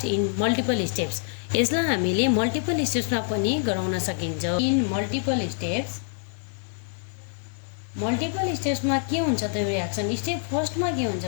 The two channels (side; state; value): right; silent; digital silence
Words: in multiple steps. यसलाई हामीले multiple स्टेप्समा पनि गराउन सकिन्छ। इन मल्टिपल स्टेप्समा के हुन्छ त यो रियाक्सन। स्टेप फर्स्टमा के हुन्छ